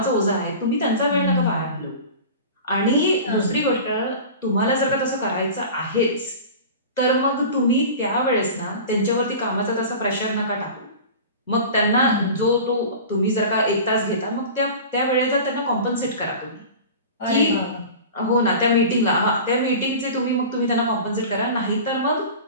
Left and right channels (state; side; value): inverted; both; correlation -0.35